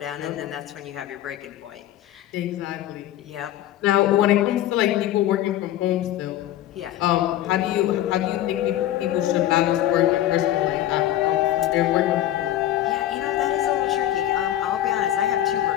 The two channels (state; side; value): quieter; right; 12.9 dB